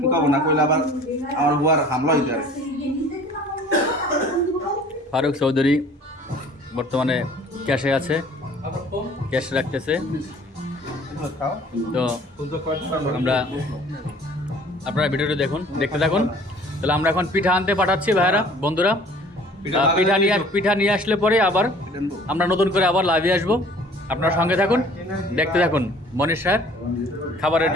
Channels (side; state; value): both; normal; correlation 0.51